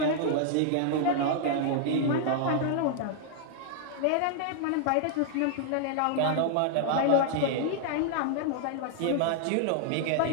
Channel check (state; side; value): different; both; correlation 0.00